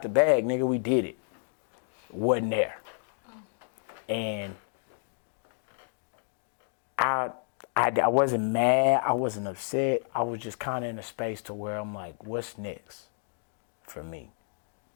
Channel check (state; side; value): silent; right; digital silence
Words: the bag, nigga, we did it. Wasn't there. And I wasn't mad, I wasn't upset. I was just kind of in a space to where I'm like, what's next for me?